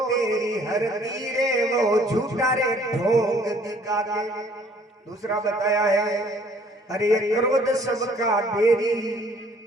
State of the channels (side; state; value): both; normal; correlation 0.58